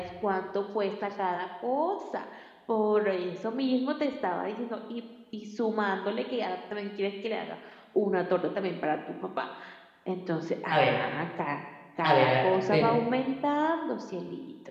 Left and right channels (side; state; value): both; identical; correlation 1.00